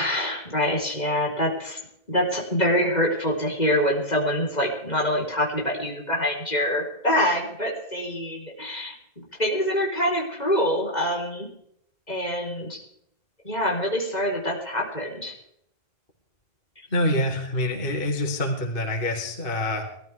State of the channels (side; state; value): right; late; 2.0 ms